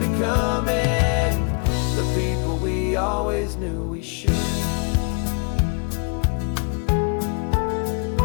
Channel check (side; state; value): right; quieter; 36.5 dB